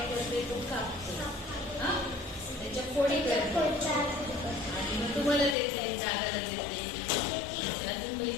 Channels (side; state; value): right; drops out; at 5.6 s